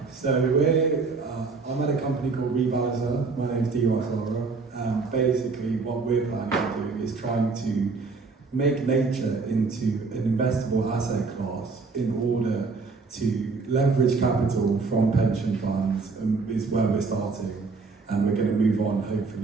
up. So I'm at a company called Revalizer. My name's D-Ross Laura. Basically, what we're planning to do is trying to make nature into an investable asset class in order to leverage capital from pension funds, is where we're starting, and we're going to move on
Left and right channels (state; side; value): quieter; left; 4.4 dB